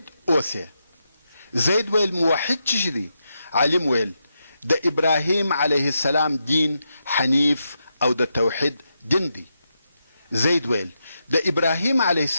اوسې. زید ویل موحد څه شي دی؟ عالم ویل د ابراهیم علیه السلام دین حنیف او د توحید دین دی. زید ویل د ابراهیم علیه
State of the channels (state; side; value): inverted; both; correlation -0.85